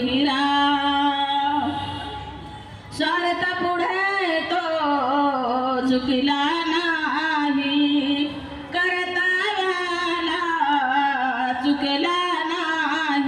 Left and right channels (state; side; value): identical; both; correlation 1.00